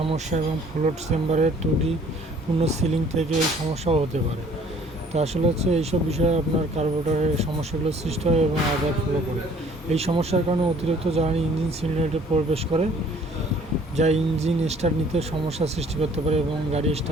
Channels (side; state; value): both; normal; correlation 0.56